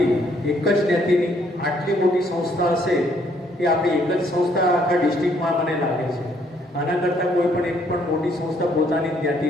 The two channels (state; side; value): normal; both; correlation 0.67